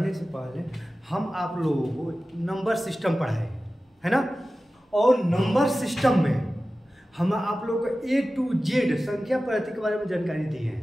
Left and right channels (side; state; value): both; normal; correlation 0.95